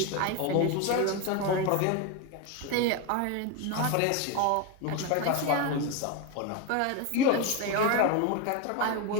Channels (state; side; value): different; both; correlation 0.03